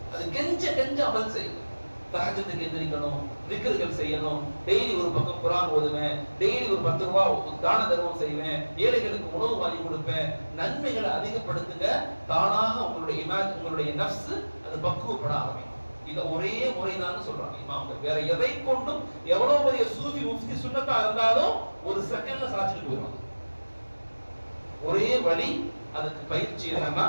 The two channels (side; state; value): both; inverted; correlation -1.00